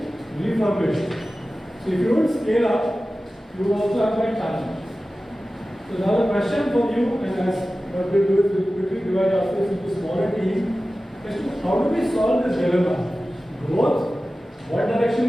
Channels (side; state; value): both; normal; correlation 0.95